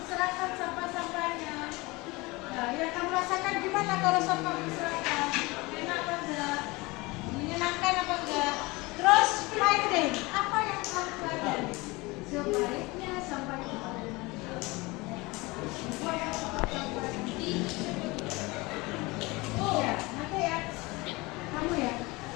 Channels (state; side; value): quieter; right; 23.5 dB